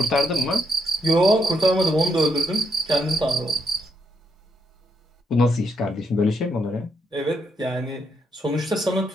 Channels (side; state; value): both; normal; correlation 0.78